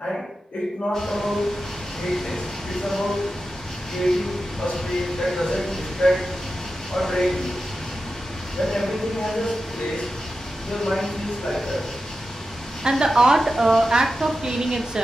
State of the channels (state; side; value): normal; both; correlation 0.91